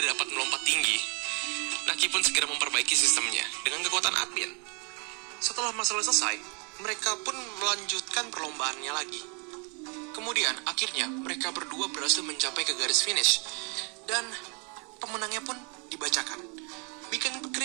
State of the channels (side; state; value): left; quieter; 34.4 dB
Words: dapat melompat tinggi. Naki pun segera memperbaiki sistemnya dengan kekuatan admin. Setelah masalah selesai, mereka pun melanjutkan perlombaannya lagi. Kemudian, akhirnya, mereka berdua berhasil mencapai ke garis finish. Dan pemenangnya pun dibacakan. Beacon